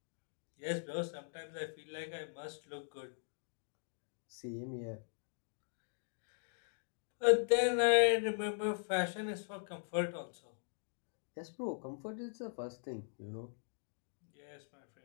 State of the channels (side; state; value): right; silent; digital silence